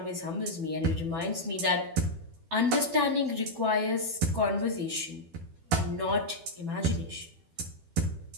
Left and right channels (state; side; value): late; left; 12 ms